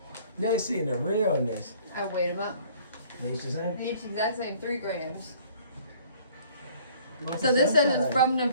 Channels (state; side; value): inverted; both; correlation -0.55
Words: They seeing the realness. I weighed them up. Each the same? Each exact same, 3 grams. So this says it's from